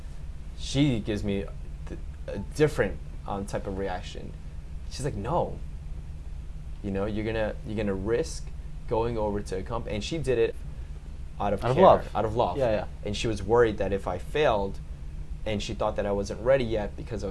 she gives me a different type of reaction. She's like, no. You're gonna risk going over to a company, and she did it out of care, out of love. Yeah. And she was worried that if I failed, and she thought that I wasn't ready yet because I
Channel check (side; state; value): both; identical; correlation 1.00